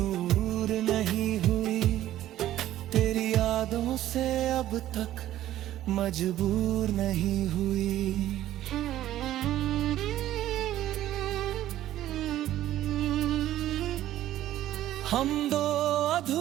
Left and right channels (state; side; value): quieter; left; 13.4 dB